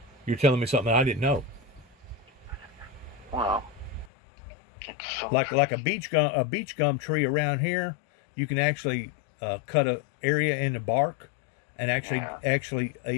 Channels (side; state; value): right; drops out; at 4.1 s